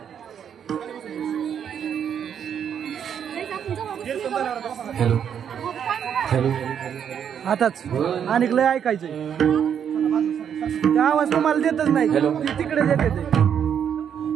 हॅलो हॅलो आताच आणि लय ऐकायचंय ते आवाज तुम्हाला देतच नाही ती तिकडे देते ते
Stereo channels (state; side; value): quieter; left; 8.4 dB